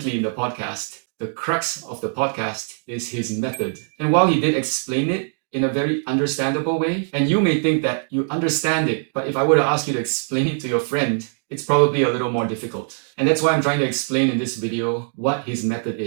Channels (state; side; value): silent; left; 57 dB below the other